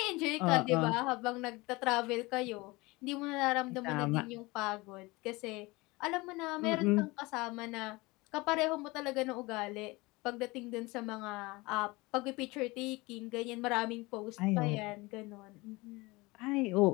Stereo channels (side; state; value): right; quieter; 23.1 dB